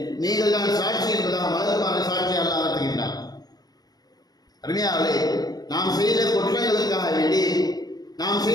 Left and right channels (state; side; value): late; right; 0.19 ms